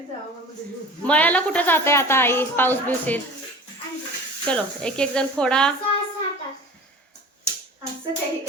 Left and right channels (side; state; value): both; normal; correlation 0.39